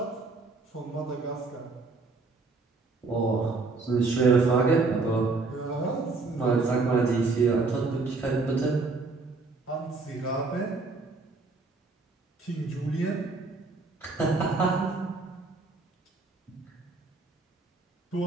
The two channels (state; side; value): quieter; left; 3.8 dB